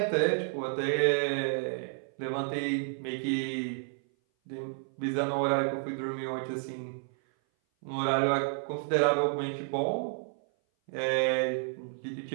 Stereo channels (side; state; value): left; silent; 56 dB below the other